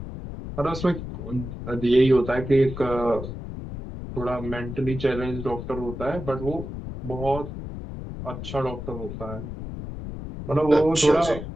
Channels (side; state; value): left; noise; rumble, 8 dB below the sound